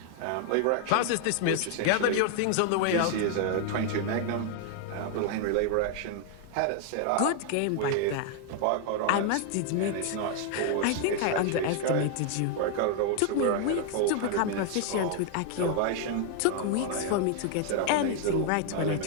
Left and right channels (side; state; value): both; different; correlation 0.00